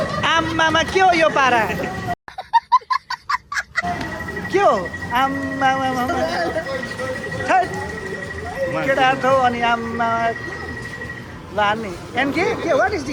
आम्मामा के हो यो पारा के हो आम्मामा केटा हो अनि आम्मा ल हान्ने एनके के वाट इज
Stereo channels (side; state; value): both; identical; correlation 1.00